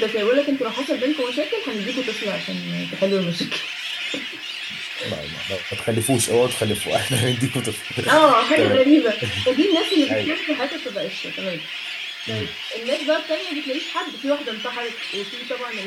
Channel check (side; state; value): both; identical; correlation 1.00